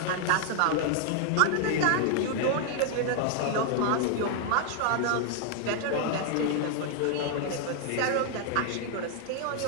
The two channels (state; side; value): different; both; correlation 0.00